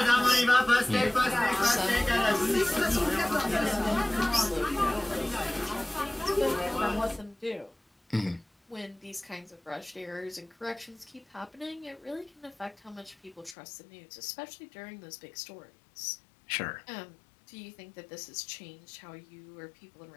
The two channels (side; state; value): right; drops out; at 13.6 s